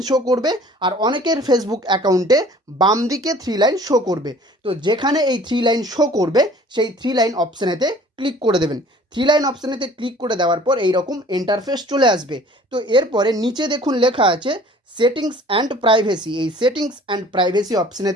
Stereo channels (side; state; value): both; normal; correlation 0.50